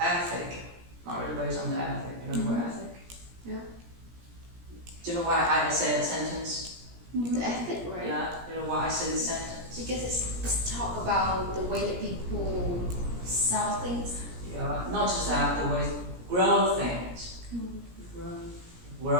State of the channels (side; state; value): left; late; 17 ms